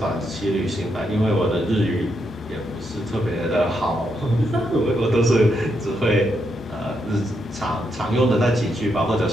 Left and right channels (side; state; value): both; normal; correlation 0.80